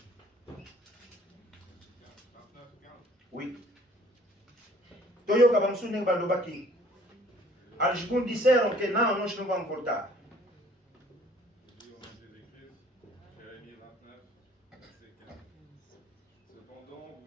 Oui. Toyoka Bamsuning Balobaki. Aljikun disait que non, je ne vais pas me porter. Jérémie 29, verset 15. Cependant,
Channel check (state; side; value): normal; both; correlation 0.55